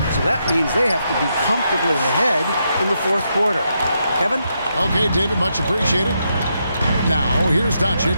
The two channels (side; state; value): both; inverted; correlation -0.81